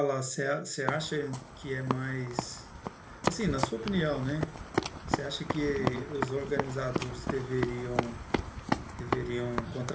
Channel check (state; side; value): identical; both; correlation 1.00